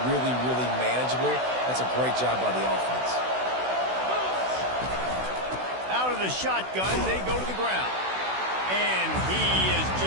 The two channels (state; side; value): late; left; 16 ms